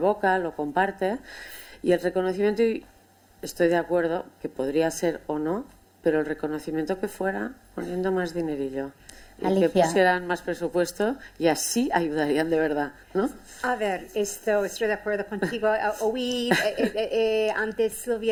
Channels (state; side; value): identical; both; correlation 1.00